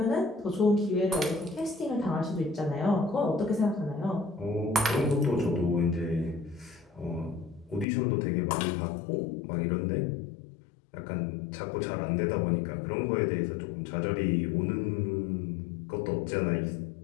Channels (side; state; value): right; drops out; at 7.9 s